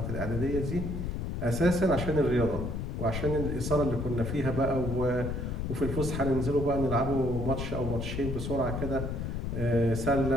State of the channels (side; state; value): left; noise; rumble, 3 dB below the sound